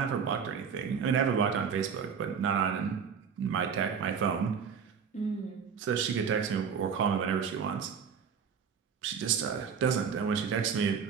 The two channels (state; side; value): quieter; left; 6.7 dB